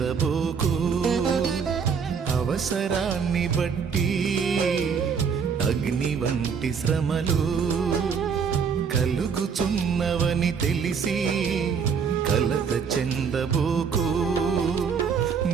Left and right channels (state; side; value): quieter; left; 6.3 dB